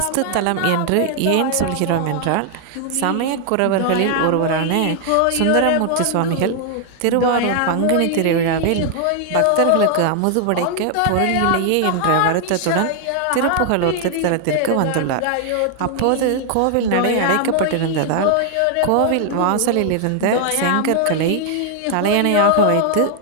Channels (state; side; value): different; both; correlation 0.00